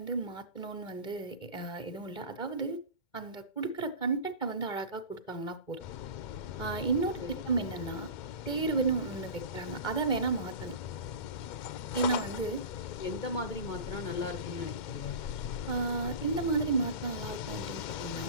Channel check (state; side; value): late; right; 2.2 ms